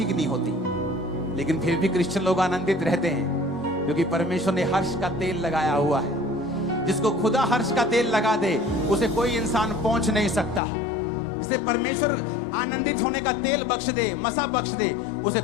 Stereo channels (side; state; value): right; drops out; at 10.6 s